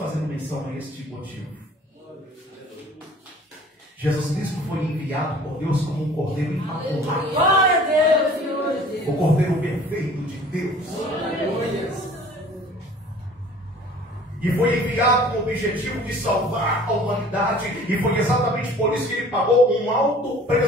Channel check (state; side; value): normal; both; correlation 0.49